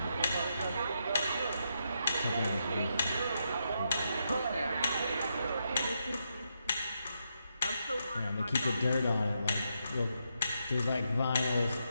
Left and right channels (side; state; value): both; inverted; correlation -0.82